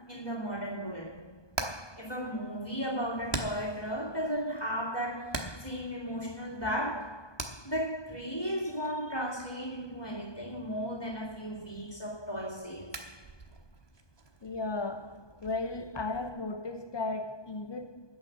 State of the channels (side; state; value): right; late; 1.2 ms